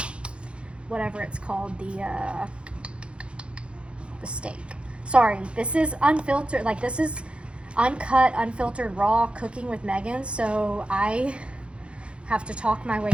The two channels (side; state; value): left; late; 0.058 ms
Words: whatever it's called, the steak. Sorry, this is unfiltered, like this is uncut, unfiltered, raw cooking with Megan, so I have to talk my way